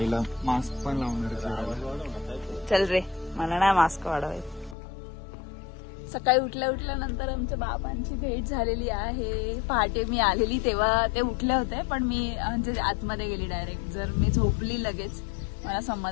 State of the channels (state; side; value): drops out; right; at 4.8 s